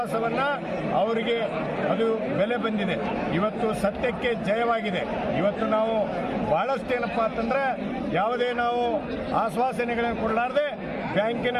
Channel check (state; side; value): identical; both; correlation 1.00